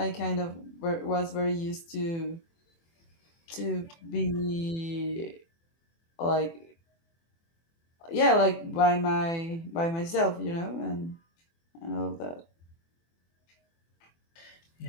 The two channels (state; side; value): late; right; 24 ms